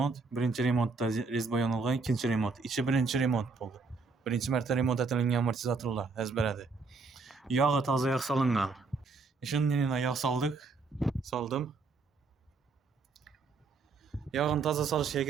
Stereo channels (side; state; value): left; quieter; 4.3 dB